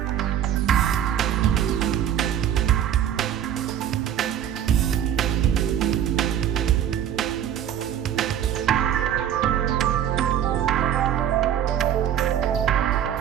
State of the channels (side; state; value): left; quieter; 10.0 dB